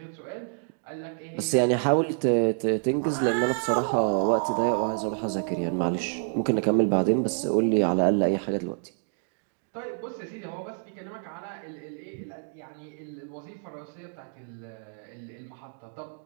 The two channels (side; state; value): left; silent; 59 dB below the other